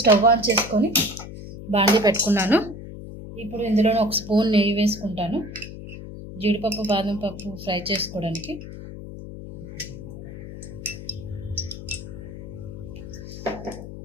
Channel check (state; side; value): noise; left; hum, 11 dB below the sound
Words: స్టవ్ ఆన్ చేసుకొని బాండీ పెట్టుకున్నాను. ఇప్పుడు ఇందులో 1 స్పూన్ నెయ్యి వేసుకుంటాను, జీడిపప్పు, బాదం పప్పు ఫ్రై చేసుకోవడానికి.